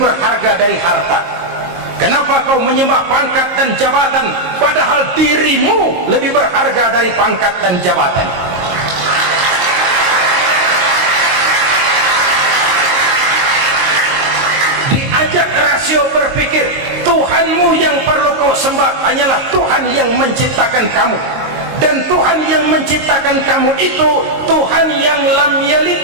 berharga dari harta? Kenapa kau menyembah pangkat dan jabatan padahal dirimu lebih berharga dari pangkat dan jabatan? Diajak rasio berpikir, Tuhanmu yang perlu kau sembah hanyalah Tuhan yang menciptakan kamu. Dan Tuhan yang menciptakan kamu itu Tuhan yang lam yalid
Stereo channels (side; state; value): left; late; 22 ms